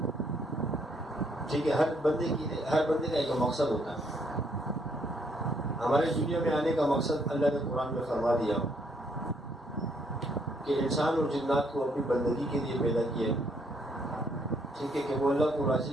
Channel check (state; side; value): normal; both; correlation 0.70